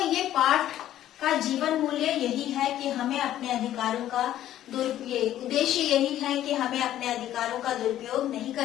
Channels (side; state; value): right; quieter; 12.5 dB